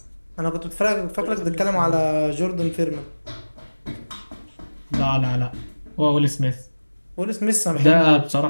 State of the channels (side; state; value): both; inverted; correlation -1.00